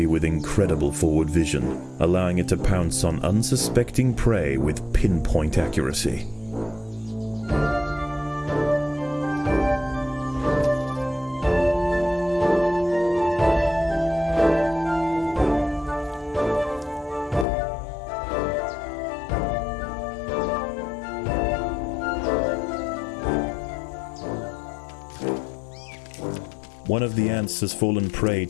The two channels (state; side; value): drops out; right; at 17.4 s